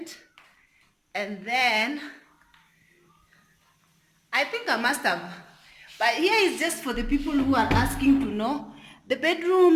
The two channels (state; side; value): identical; both; correlation 1.00